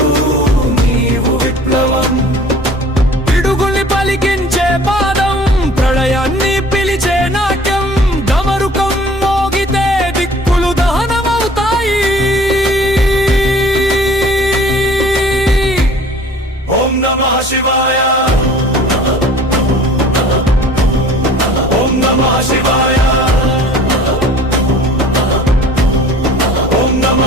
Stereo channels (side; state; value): both; normal; correlation 0.48